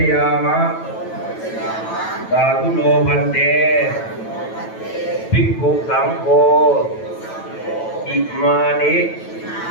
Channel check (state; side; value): late; right; 9.1 ms